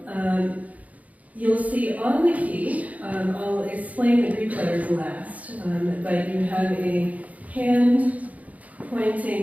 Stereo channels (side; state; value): left; late; 0.072 ms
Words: you'll see on the key, I'll explain the Greek letters last, but you have a hand